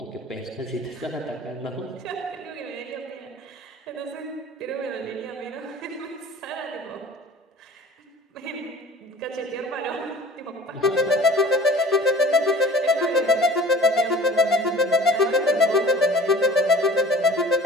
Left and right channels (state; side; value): normal; both; correlation 0.45